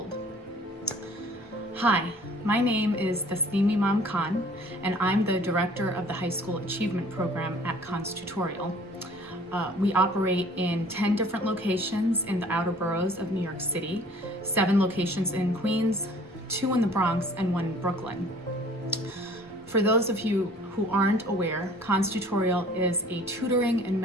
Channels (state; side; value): normal; both; correlation 0.51